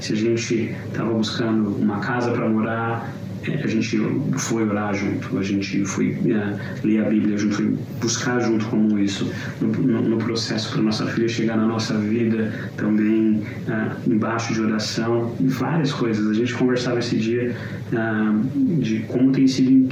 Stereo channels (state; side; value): identical; both; correlation 1.00